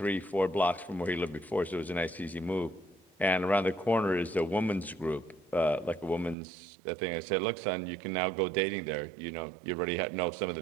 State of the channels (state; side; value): drops out; left; at 6.4 s